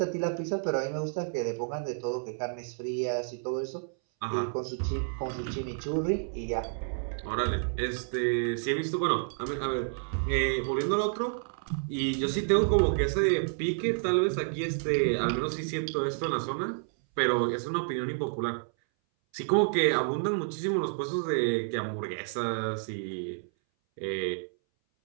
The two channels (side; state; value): left; silent; 58 dB below the other